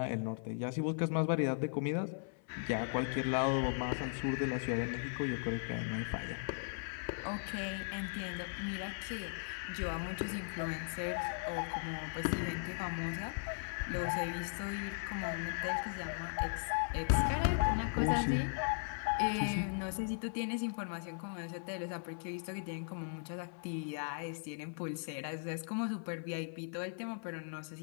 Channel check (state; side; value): silent; right; 52 dB below the other